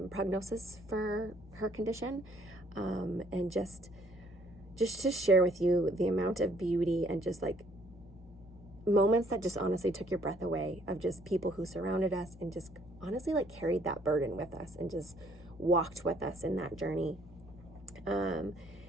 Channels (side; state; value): both; normal; correlation 0.63